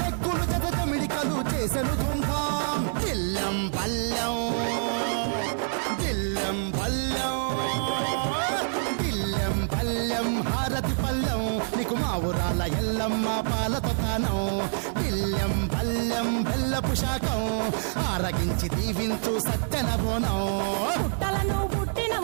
జత జమిడికలు చేసెను తుంటాం, దిల్లెం పల్లెం దిల్లెం పల్లెం దిల్లెం పల్లెం హారతి పల్లెం, నీకు మా ఊరాల ఎల్లమ్మ పాలతో తానం, దిల్లెం పల్లెం బెల్లపు శాఖం, ఆరగించి దీవించు సత్యన బోనం. పుట్టలను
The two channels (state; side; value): silent; left; 60 dB below the other